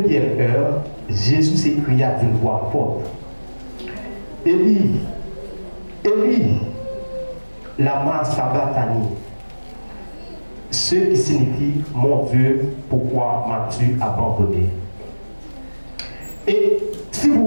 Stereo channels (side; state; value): both; inverted; correlation -1.00